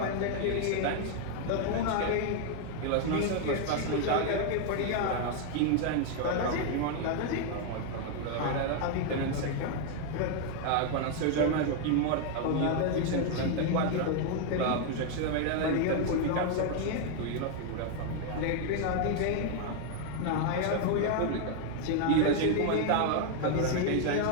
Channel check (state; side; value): different; both; correlation 0.00